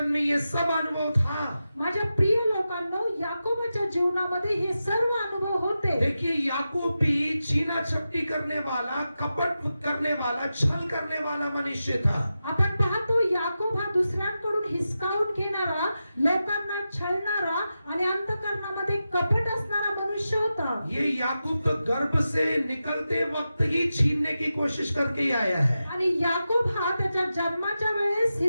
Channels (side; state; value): both; inverted; correlation -0.91